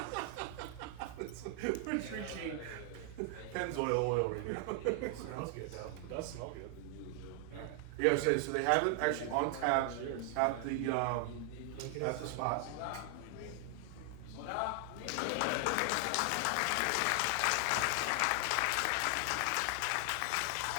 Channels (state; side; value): different; both; correlation 0.00